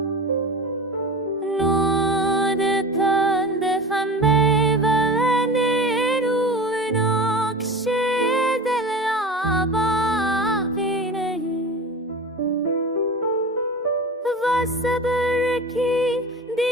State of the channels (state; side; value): normal; both; correlation 0.32